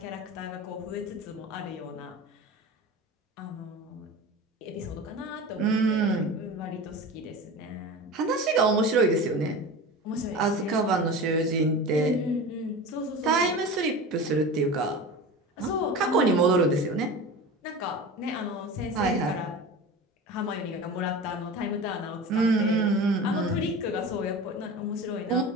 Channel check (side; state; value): both; normal; correlation 0.32